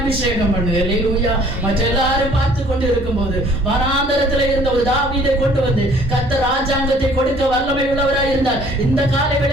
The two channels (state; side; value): normal; both; correlation 0.56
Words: பண்ணு. ஹல்லேலூயா. மற்ற எல்லாரும் பார்த்து கொண்டு இருக்கும்போது வனாந்தரத்துல இருந்த ஒரு தாவீதை கொண்டு வந்து கர்த்தர் ராஜாங்கத்தை கொடுக்க வல்லமை உள்ளவராய் இருந்தார். இந்த காலை